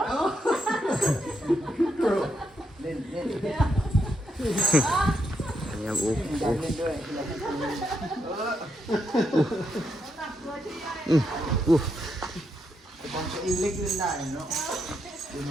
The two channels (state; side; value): normal; both; correlation 0.80